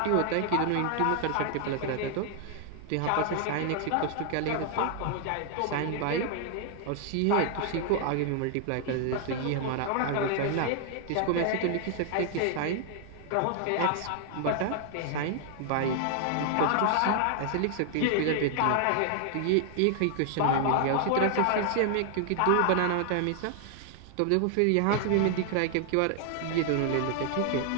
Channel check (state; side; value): different; both; correlation 0.00